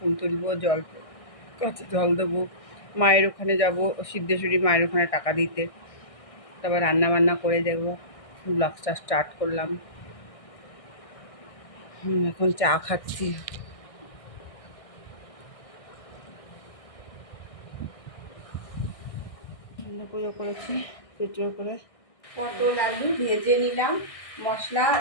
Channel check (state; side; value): late; right; 1.6 ms